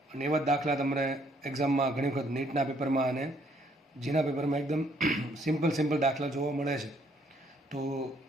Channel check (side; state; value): both; normal; correlation 0.67